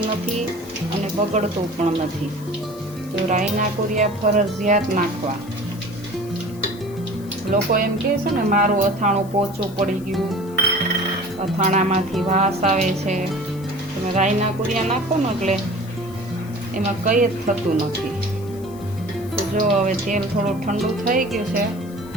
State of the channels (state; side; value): noise; left; hiss, 23 dB below the sound